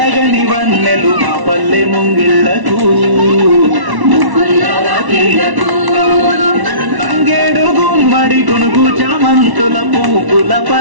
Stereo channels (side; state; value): left; late; 1.1 ms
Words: వన్నెలు మా పల్లె ముంగిళ్లకు తంగేడు గుమ్మడి గునుగు చామంతుల పూపుల